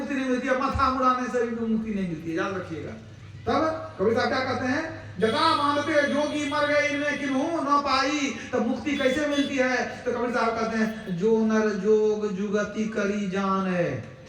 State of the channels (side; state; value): both; identical; correlation 1.00